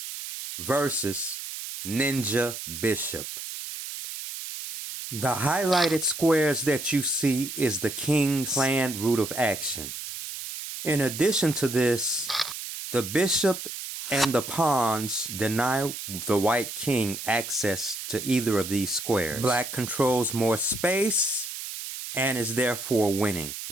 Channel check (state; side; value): noise; right; hiss, 8 dB below the sound